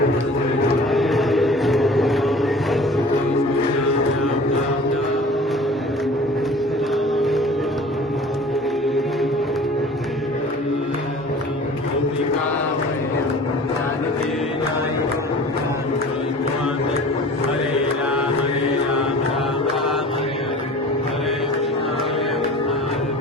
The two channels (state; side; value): normal; both; correlation 0.43